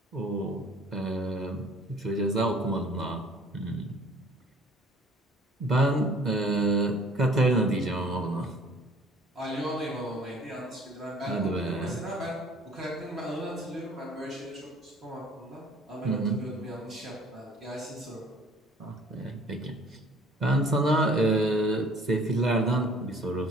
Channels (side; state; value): both; normal; correlation 0.53